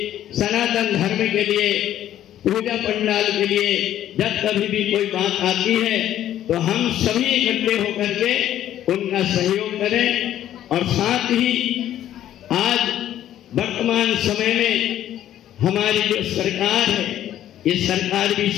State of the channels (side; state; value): right; quieter; 11.9 dB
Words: सनातन धर्म के लिए, पूजा पंडाल के लिए जब कभी भी कोई बात आती है तो हम सभी इकट्ठे होकर के उनका सहयोग करें। और साथ ही आज वर्तमान समय में हमारी जो सरकार है, ये सरकार भी